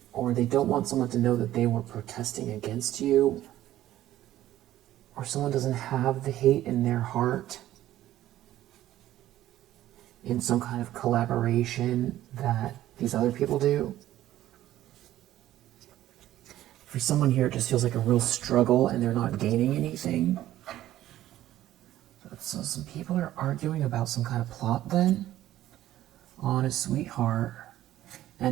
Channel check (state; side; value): quieter; left; 13.7 dB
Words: or they don't want someone to know that they were protesting against you, or someone doesn't have the hate in their heart in some kind of collaboration that these other people do. For someone here, it just feels like a real struggle and they're not gaining anything. So some people are arguing about some kind of plot then on a sweetheart,